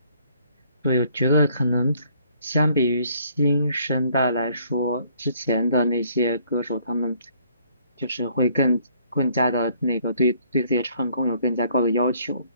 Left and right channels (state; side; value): inverted; both; correlation -0.64